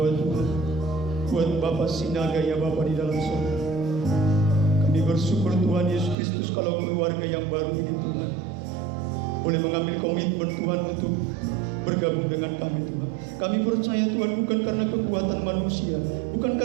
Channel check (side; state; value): left; drops out; at 6.2 s